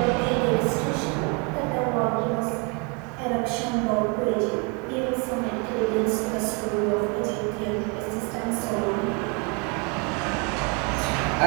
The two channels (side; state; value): left; quieter; 33.1 dB